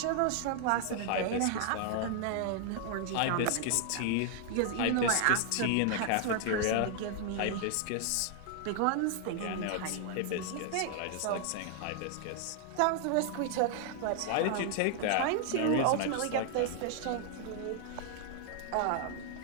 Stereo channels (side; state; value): both; different; correlation 0.00